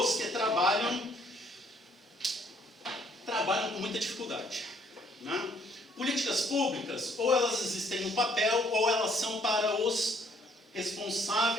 que trabalham com muita dificuldade. Né? Políticas públicas, ou elas existem no papel, ou elas são para os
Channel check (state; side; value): normal; both; correlation 0.64